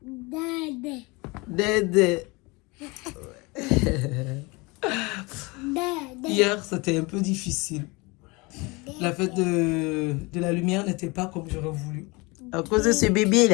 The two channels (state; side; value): quieter; right; 25.7 dB